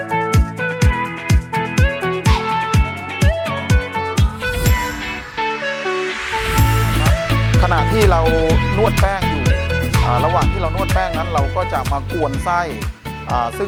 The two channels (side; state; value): both; identical; correlation 1.00